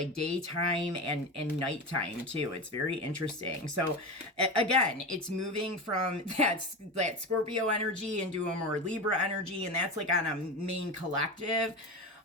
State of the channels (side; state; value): both; normal; correlation 0.23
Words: daytime and nighttime too. It's very interesting. So again, it's moving from that Scorpio energy into a more Libra energy, and that's like on a main collective.